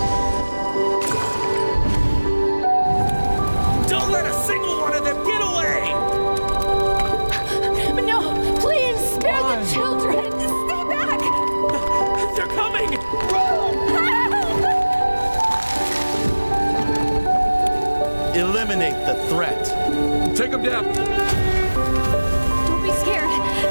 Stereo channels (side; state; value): both; inverted; correlation -1.00